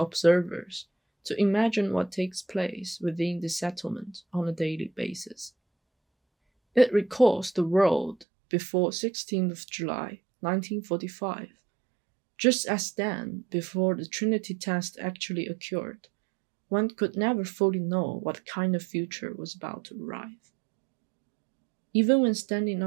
to imagine what takes place within the settlement on a daily basis. It recalls the world before 16th of July 1945, just as then, before the Trinity test actually occurred, one could never fully know what kind of future was about to arrive. Even when standing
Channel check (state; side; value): drops out; left; at 8.2 s